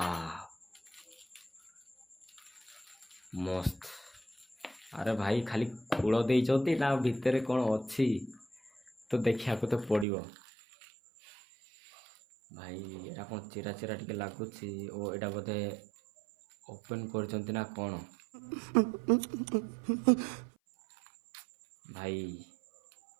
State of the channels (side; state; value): left; drops out; at 10.1 s